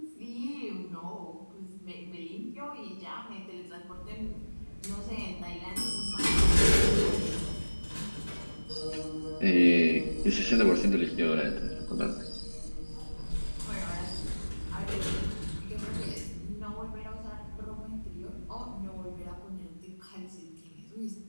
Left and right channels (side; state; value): both; inverted; correlation -1.00